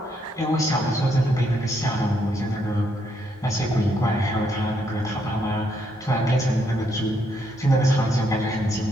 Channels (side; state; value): both; normal; correlation 0.75